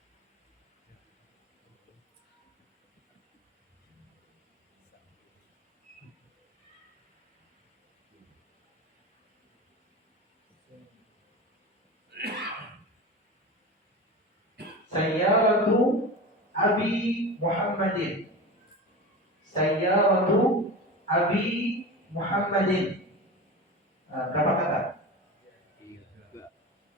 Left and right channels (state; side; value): normal; both; correlation 0.29